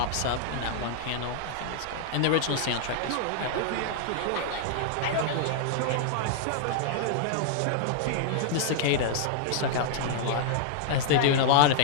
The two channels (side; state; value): both; different; correlation -0.01